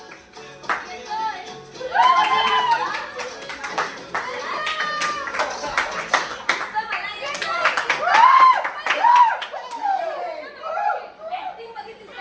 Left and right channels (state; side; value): identical; both; correlation 1.00